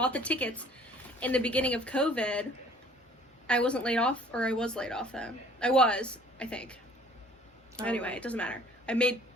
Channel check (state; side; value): normal; both; correlation 0.53